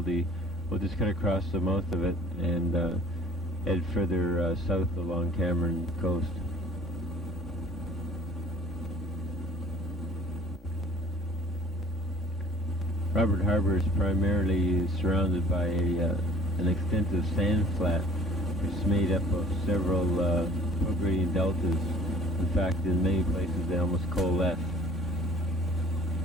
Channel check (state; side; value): normal; both; correlation 0.50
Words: We'll just cut across the mouth of it and head further south along Cameron coast. Robert Harbor is primarily surrounded by an extensive sand flat, which is made up of several prograding deltas. In fact, in many places they almost coalesce,